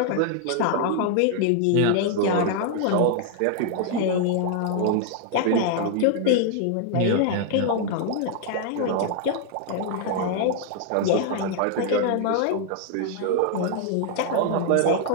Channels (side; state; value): both; different; correlation 0.00